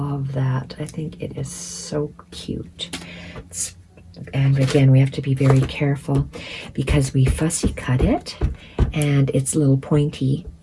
that. I think it is so cute. And again, we have to be very careful because we fussy cut it and it's little pointy,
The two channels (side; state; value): both; identical; correlation 1.00